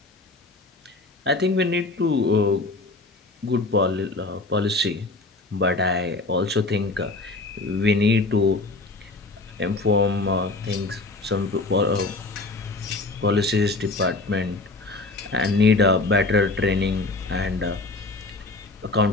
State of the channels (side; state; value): right; quieter; 3.3 dB